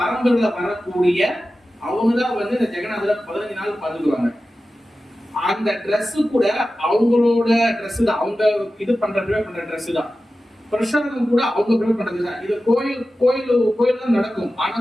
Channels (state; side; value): normal; both; correlation 0.94